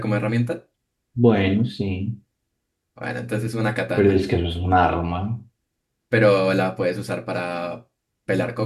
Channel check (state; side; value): identical; both; correlation 1.00